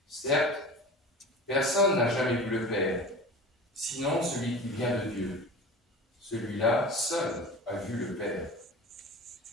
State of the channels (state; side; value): normal; both; correlation 0.36